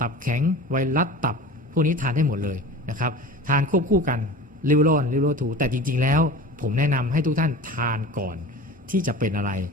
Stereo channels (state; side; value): normal; both; correlation 0.36